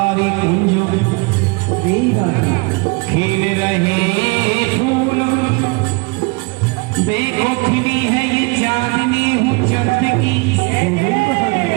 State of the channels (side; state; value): left; quieter; 28.5 dB